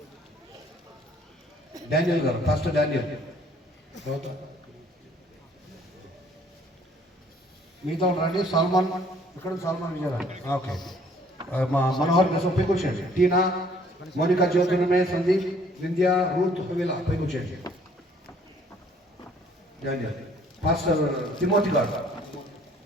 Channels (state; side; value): normal; both; correlation 0.60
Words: డానియల్ గారు ఫస్ట్ డానియల్, మీతో రండి. సల్మాన్ ఇక్కడ, సల్మాన్ విజయరాజ్. ఓకే, మా మనోహర్ కోసం పైకి వచ్చేయండి. టీనా, మోనికా, జ్యోతిర్మయ, సందీప్, వింధ్య, రూత్, హువిలా పైకి వచ్చేయండి. డానియల్ పాస్టర్ తిమోతి గారు.